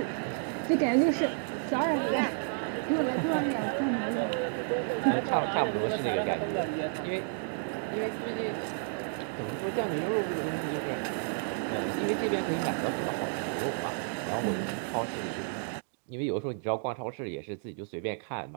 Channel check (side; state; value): left; silent; 57 dB below the other